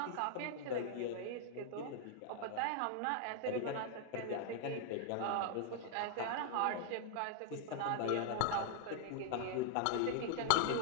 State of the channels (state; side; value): different; both; correlation -0.01